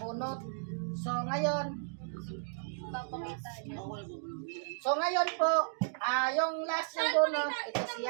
So, ngayon, po, yung last yung bunot, ito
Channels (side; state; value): left; silent; digital silence